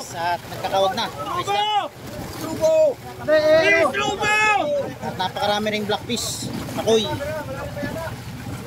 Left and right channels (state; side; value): identical; both; correlation 1.00